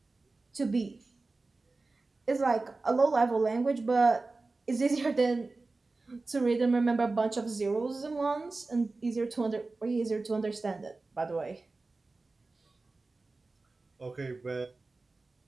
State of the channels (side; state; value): left; quieter; 3.5 dB